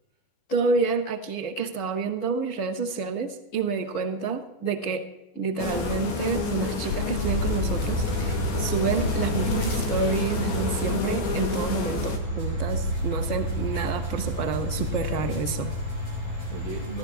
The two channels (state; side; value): late; right; 14 ms